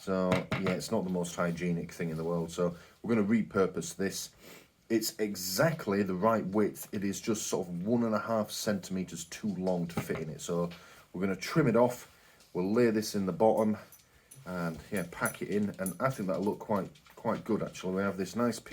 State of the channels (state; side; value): identical; both; correlation 1.00